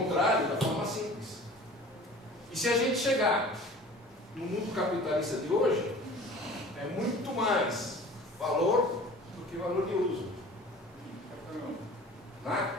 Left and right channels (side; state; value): both; normal; correlation 0.44